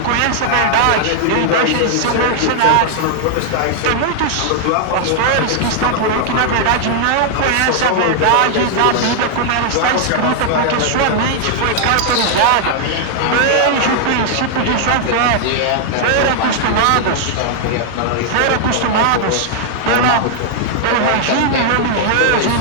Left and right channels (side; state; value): both; different; correlation 0.00